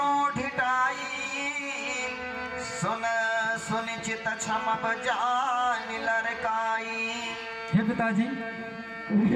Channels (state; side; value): identical; both; correlation 1.00